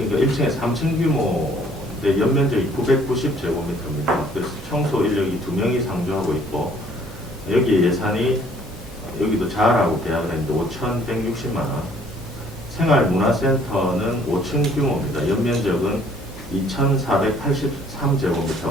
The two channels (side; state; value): both; normal; correlation 0.60